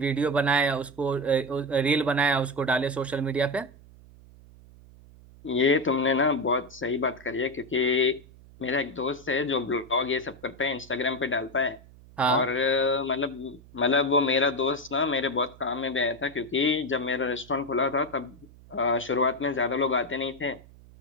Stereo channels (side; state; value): right; noise; hum, 22 dB below the sound